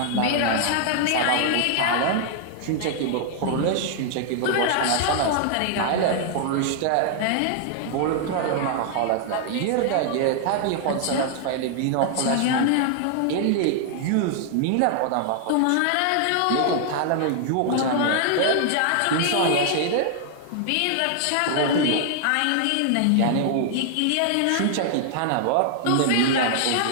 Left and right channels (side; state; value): both; different; correlation 0.00